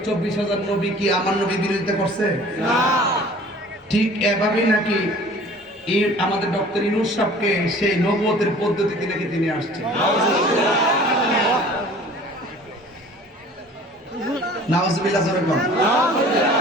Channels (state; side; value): normal; both; correlation 0.47